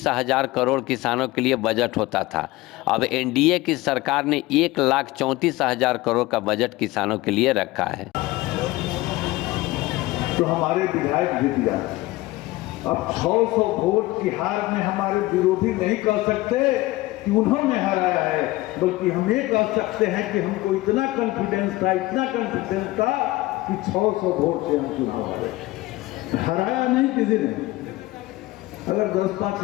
हजार करोड़ किसानों के लिए बजट होता था। अब एनडीए की सरकार ने 1,34,000 करोड़ का बजट किसानों के लिए रखा है। तो हमारे विधायक जीत जाते। अब 600 वोट की हार में हमारे विरोधी नहीं कह सकते कि उन्होंने हराया है, बल्कि हम ये कह सकते हैं कि हमको इतना कॉन्फिडेंस था कि 600 वोट से हम चुनाव हारे। हराया नहीं किसी ने। अगर 10-5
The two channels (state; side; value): quieter; right; 19.0 dB